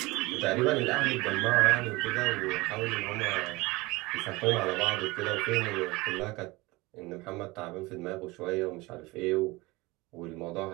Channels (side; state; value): left; quieter; 22.2 dB